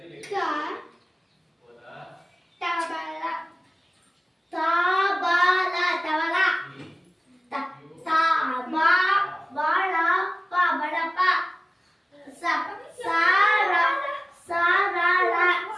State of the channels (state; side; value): normal; both; correlation 0.97